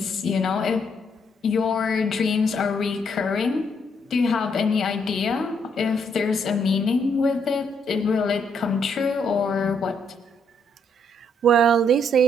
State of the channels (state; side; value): normal; both; correlation 0.72